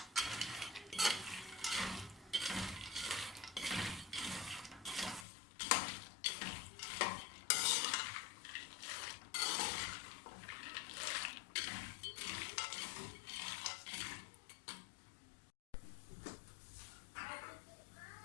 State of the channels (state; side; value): drops out; right; at 5.2 s